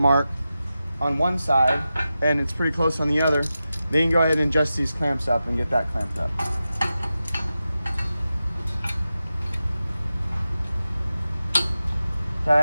on one side, and it's pretty close on the other, then you can go ahead and adjust these clamps up and get that clamped up.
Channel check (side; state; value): both; inverted; correlation -0.93